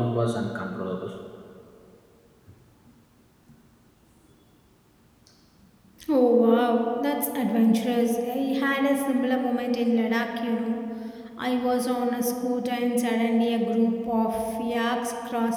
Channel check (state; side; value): identical; both; correlation 1.00